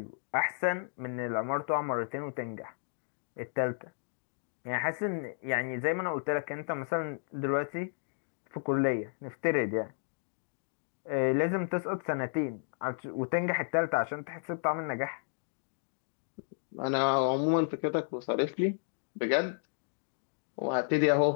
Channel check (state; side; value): silent; right; digital silence